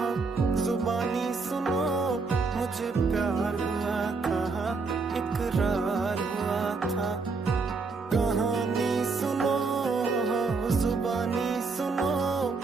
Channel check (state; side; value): quieter; left; 4.3 dB